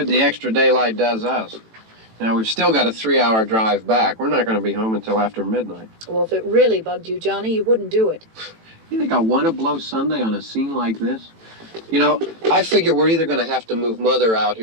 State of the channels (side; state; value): left; late; 18 ms